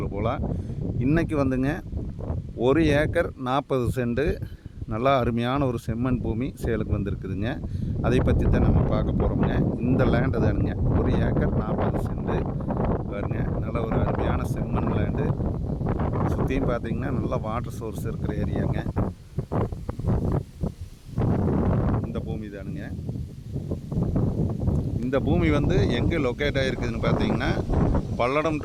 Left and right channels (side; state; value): both; identical; correlation 1.00